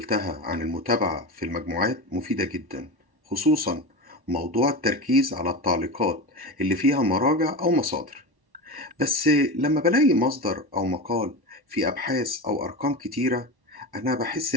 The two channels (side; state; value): left; late; 1.1 ms